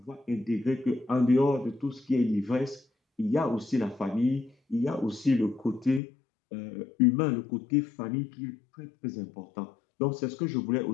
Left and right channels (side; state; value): right; drops out; at 6.0 s